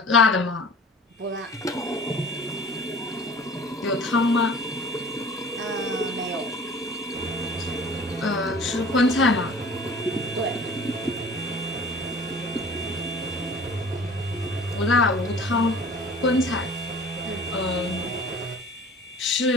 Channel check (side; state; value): both; normal; correlation 0.45